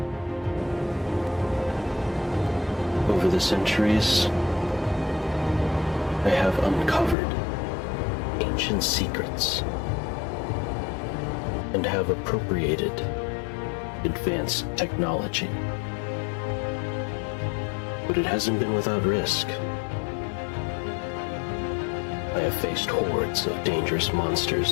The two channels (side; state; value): right; drops out; at 7.2 s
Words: Over the centuries, I have uncovered ancient secrets and have appropriated advanced technology. But it hasn't been without risk. I have faced hordes of dangerous